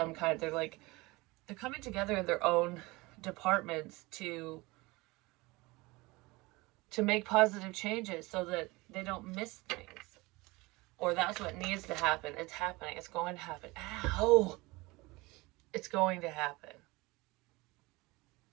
kind. They're coming together in their own departments to make positive changes so that they don't miss things. Or that's what needs to happen. It's happening. It's going to happen. Ow! It's going to happen.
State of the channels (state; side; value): quieter; left; 22.7 dB